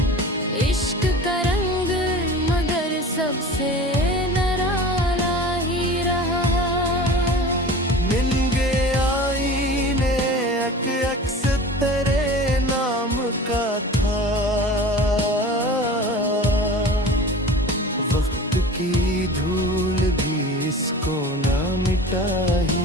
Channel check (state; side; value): normal; both; correlation 0.38